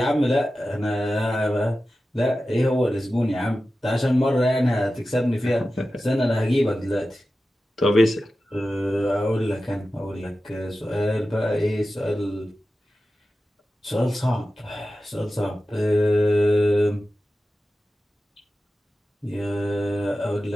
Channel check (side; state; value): both; normal; correlation 0.94